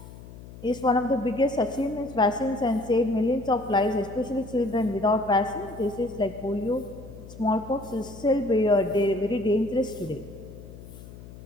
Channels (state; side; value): noise; left; hum, 16 dB below the sound